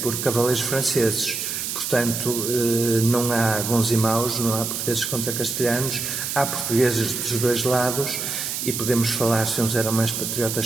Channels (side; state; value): right; noise; hiss, 3 dB below the sound